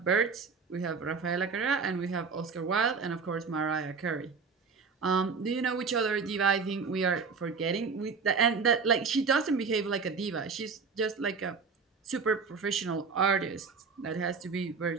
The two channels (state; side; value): quieter; left; 5.1 dB